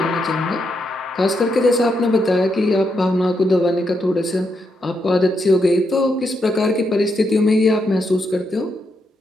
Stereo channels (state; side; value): normal; both; correlation 0.81